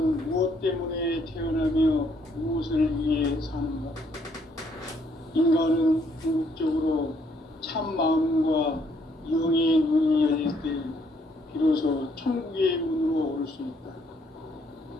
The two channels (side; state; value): both; normal; correlation 0.69